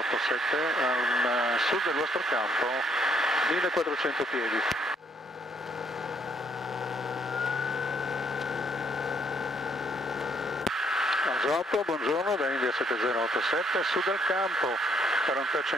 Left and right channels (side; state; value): both; normal; correlation 0.68